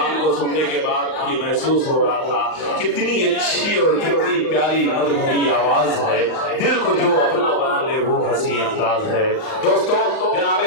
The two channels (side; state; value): right; late; 38 ms